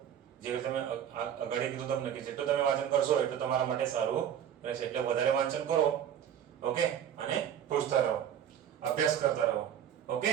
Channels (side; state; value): left; quieter; 9.5 dB